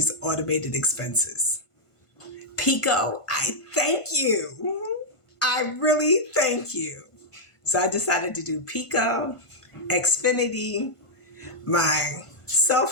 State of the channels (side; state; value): right; late; 1.5 ms